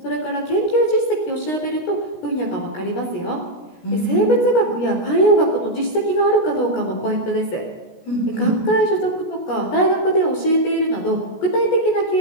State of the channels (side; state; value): right; late; 16 ms